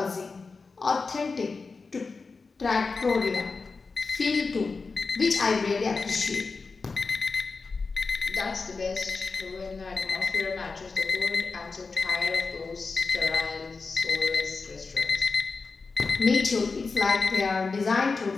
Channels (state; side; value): quieter; right; 4.3 dB